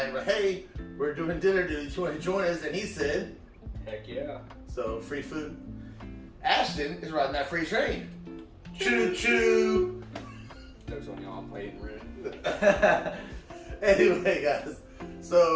But hey, we're doing Dinner Dudes. You want to join us? And he said, Heck yeah. so free food. Ashton is riding that free train. Choo choo. Jokes on y'all, I'm playing red. Anyway, guys,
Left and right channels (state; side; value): identical; both; correlation 1.00